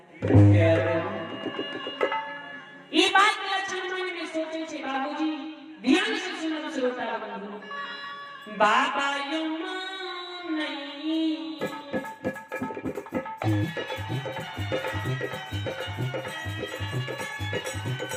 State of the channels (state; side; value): identical; both; correlation 1.00